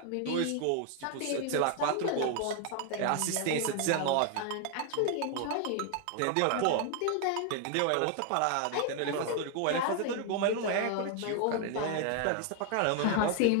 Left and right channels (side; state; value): both; different; correlation 0.00